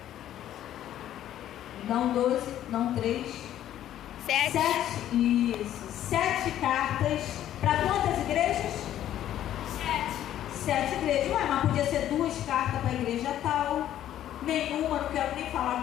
Não 12, não 3. 7. Isso. 7 cartas. Para quantas igrejas? 7 igrejas. Ué, mas podia ser 2 cartas para a igreja tal. Nenhuma, não quero nem falar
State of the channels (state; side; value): quieter; right; 11.8 dB